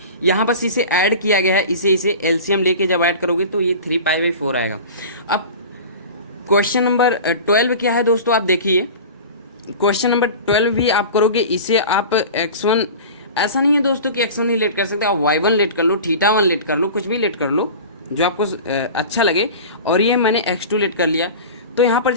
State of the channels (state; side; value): inverted; both; correlation -0.35